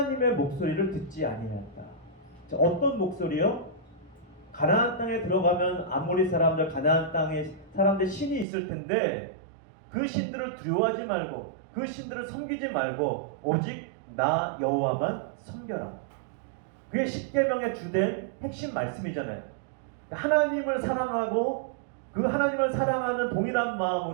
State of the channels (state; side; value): drops out; left; at 8.5 s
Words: 목소리를 듣지 아니하였다. 자, 어떤 목소리요? 가나안 땅에 들어가면 아모리 사람들, 가나안 땅에 사람들 신이 있을 텐데 그 신들을 두려워하지 말고 그 신들을 섬기지 말고 오직 나 여호와만 섬겨라. 그게 십계명의 주된 핵심 말씀이잖아요. 하나님을 사랑하고 그 하나님을 사랑하는 동일한